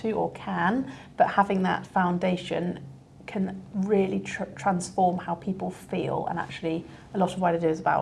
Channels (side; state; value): both; identical; correlation 1.00